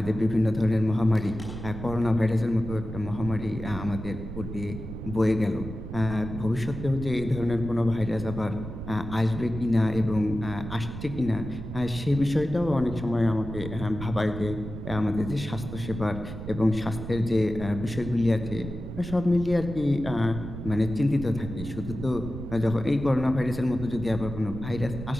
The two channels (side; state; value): right; noise; rumble, 9 dB below the sound